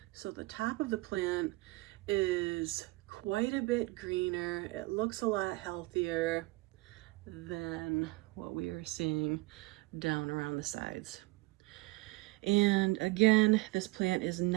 So the top of the plant is quite a bit greener. It looks a lot healthier than what we are seeing down around the sides. And again, this plant is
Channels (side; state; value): left; quieter; 22.6 dB